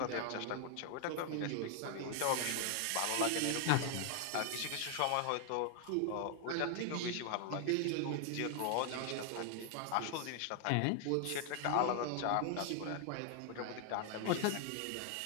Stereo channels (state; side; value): different; both; correlation 0.00